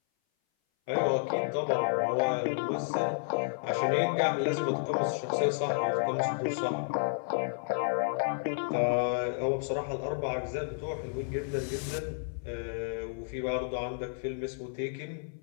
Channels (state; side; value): silent; right; 57 dB below the other